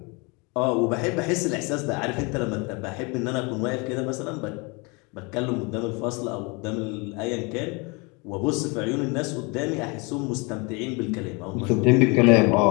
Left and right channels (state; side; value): quieter; right; 29.3 dB